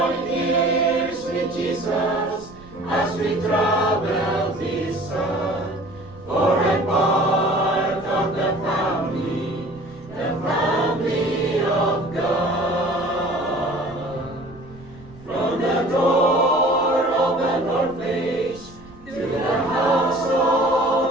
ears with Jesus as we travel this earth. For I'm part of the family of God. From the door of an orphanage to the house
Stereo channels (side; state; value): right; noise; rumble, 22 dB below the sound